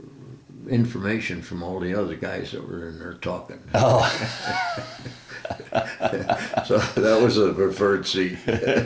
information from all the other guys that were in there talking. Oh. So that was the preferred seat.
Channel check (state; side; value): identical; both; correlation 1.00